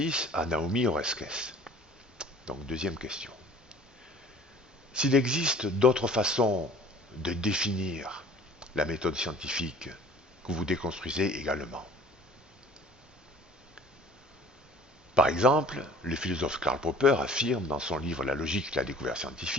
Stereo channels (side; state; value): both; normal; correlation 0.48